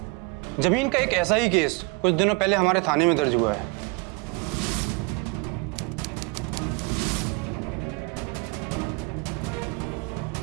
जमीन का एक ऐसा ही केस कुछ दिनों पहले हमारे थाने में दर्ज हुआ है।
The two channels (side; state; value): left; quieter; 30.4 dB